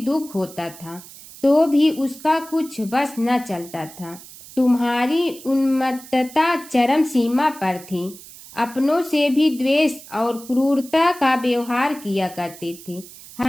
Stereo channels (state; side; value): noise; right; hiss, 18 dB below the sound